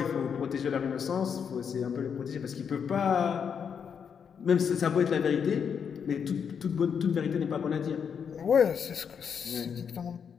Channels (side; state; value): right; quieter; 7.1 dB